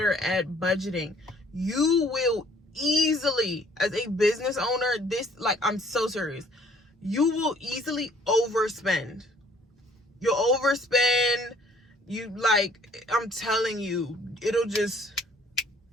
at budgeting. You will easily, as a business owner, I'm so serious, you will easily overspend. You'll overspend. I'm telling you, it'll just,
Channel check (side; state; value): both; normal; correlation 0.58